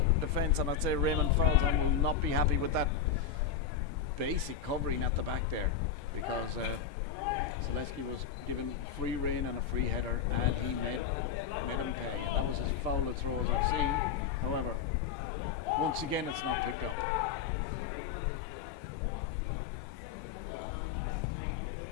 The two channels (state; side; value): quieter; right; 7.4 dB